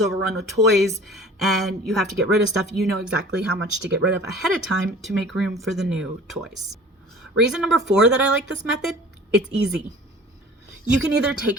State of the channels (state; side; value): normal; both; correlation 0.45